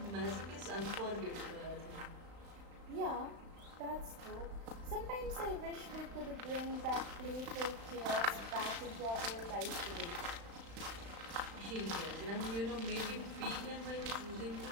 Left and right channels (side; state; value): left; late; 35 ms